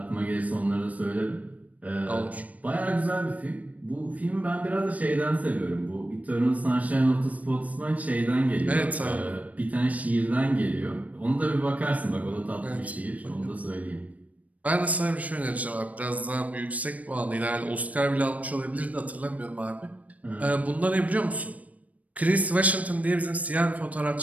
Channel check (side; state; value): left; late; 0.070 ms